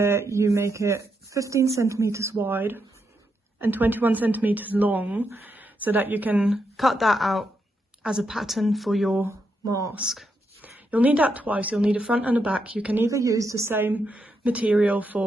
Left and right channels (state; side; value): normal; both; correlation 0.82